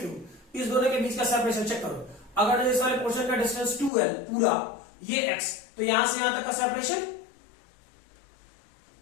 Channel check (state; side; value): drops out; right; at 3.9 s